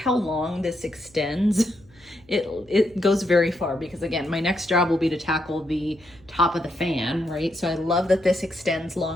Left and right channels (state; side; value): noise; left; hum, 29 dB below the sound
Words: long this extends. It goes very far, because again, my next job will be to tackle the top of the fan, right? So I love that this extends